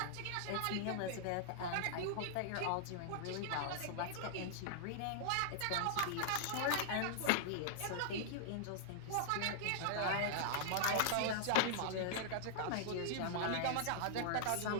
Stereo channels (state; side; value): different; both; correlation -0.01